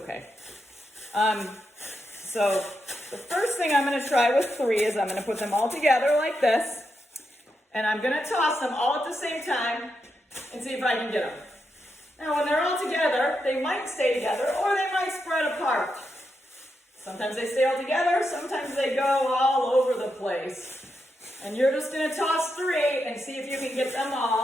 So the first thing I'm going to try with 3 is I'm going to put them all together like this. And I'm going to toss them all at the same time and see if I can get them. Now when they're all together, they might stay together or they might spread apart. Sometimes they stay all together, sometimes they go all over the place. And you're just going to toss 3 and see if you can get them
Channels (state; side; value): normal; both; correlation 0.84